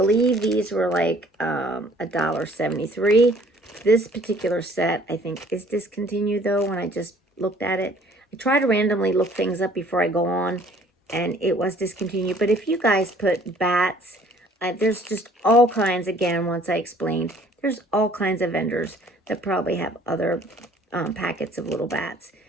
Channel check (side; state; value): both; normal; correlation 0.56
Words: these were like $1.73. This particular set, I think, is discontinued though. When I just looked at it, I try to randomly look things up before I go on, and it was discontinued. But if you guys put bats, there's just all kinds, again, once I explained, there's all kinds of vendors that probably have other packets of little bats.